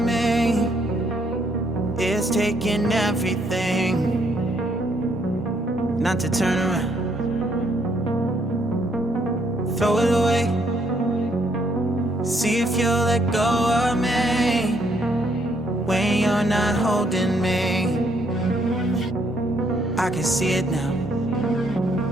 me. It's taking everything not to turn around. Throw it away. See if you'll let go of me when you're not holding me. I can see it now.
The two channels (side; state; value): both; normal; correlation 0.70